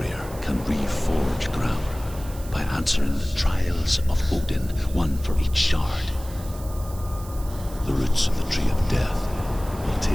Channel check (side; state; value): right; noise; hiss, 18 dB below the sound